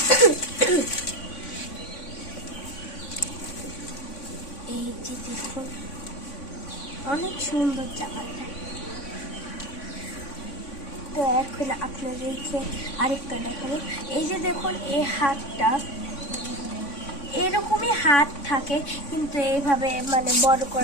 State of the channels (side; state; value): right; late; 3.5 ms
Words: এই যে দেখুন অনেক সুন্দর জামাটা। তো এখন আপনাদেরকে আরেকটা দেখাবো। এই যে দেখুন এই হাতটা, এরকমই হাত থাকে, কিন্তু এইভাবে মানে বড়